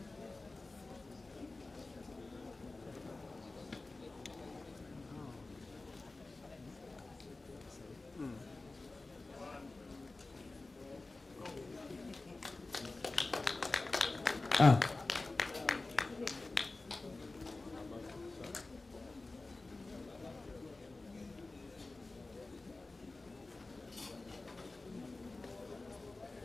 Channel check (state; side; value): quieter; right; 3.3 dB